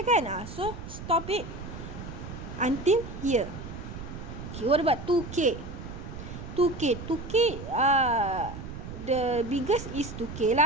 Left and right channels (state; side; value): noise; right; rumble, 10 dB below the sound